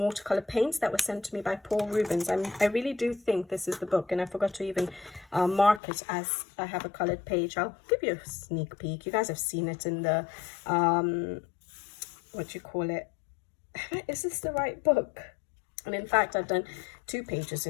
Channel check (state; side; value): drops out; right; at 5.8 s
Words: paints that was sent to me by Paul Rubens. I really do think this is the book, and I forgot to even mark it as I have a colored page. I'll give you a sneak peek. You guys have seen it in the what do you call it? Is this the right book? And in fact, I've done 2 pages